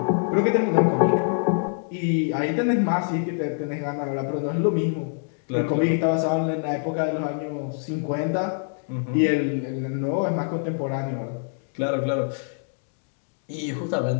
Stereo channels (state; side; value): silent; right; digital silence